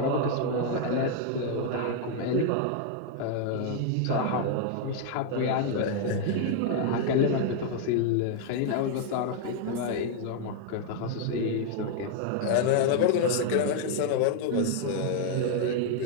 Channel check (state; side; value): different; both; correlation 0.00